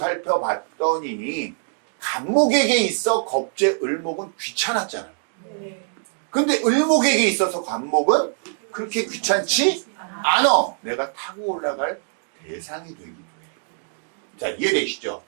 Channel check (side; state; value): left; silent; digital silence